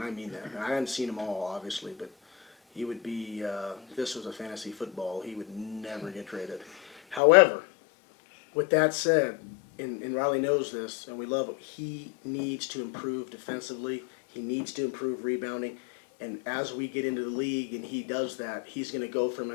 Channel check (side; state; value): right; drops out; at 7.2 s